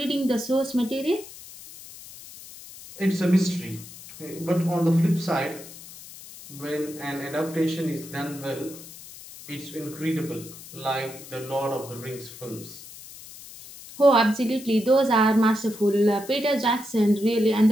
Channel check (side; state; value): left; noise; hiss, 16 dB below the sound